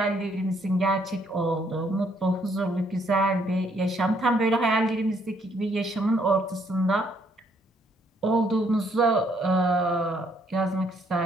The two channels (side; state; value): both; normal; correlation 0.68